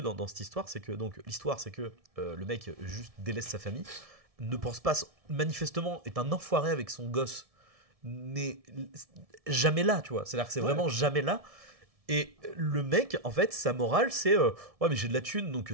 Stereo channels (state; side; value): late; left; 1.7 ms